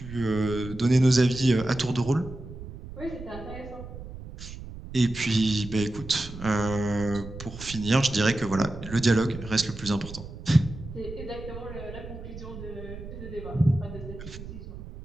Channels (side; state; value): right; noise; rumble, 12 dB below the sound